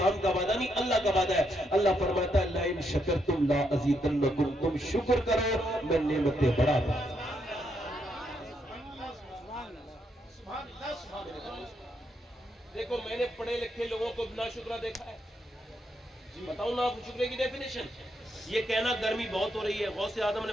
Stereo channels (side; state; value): both; normal; correlation 0.78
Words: کا وعدہ نہیں، اللہ کا وعدہ ہے۔ اللہ فرماتا ہے لَإِن شَكَرْتُمْ لَا أَزِيدَنَّكُمْ، تم شکر کرو میں نعمتیں بڑھا دوں۔ دیکھو میں نے پڑھے لکھے لوگوں کو ناشکرہ دیکھا ہے، بتاؤں نا آپ شکرے کی ڈیفینیشن؟ یہ کہنا گرمی بہت ہو رہی ہے، غوث اعظم نے